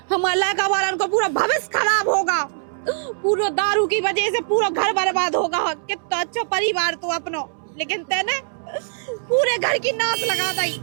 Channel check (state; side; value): silent; left; 64 dB below the other